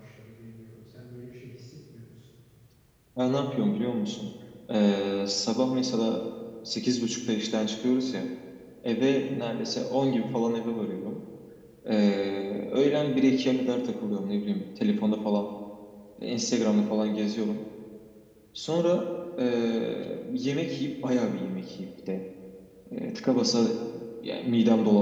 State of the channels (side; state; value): both; identical; correlation 1.00